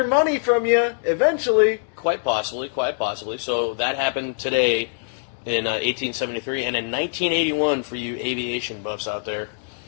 money from you eventually. Quite possibly. So that happened today in 1873, and in 1981, for you aviation buffs out there,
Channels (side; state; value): right; silent; digital silence